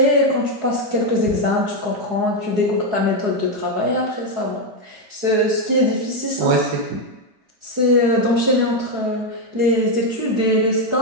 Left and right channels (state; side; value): late; left; 4.7 ms